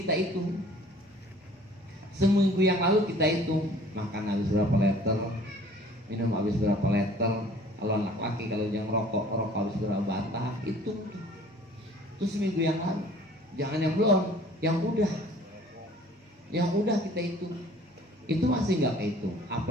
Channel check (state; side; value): normal; both; correlation 0.51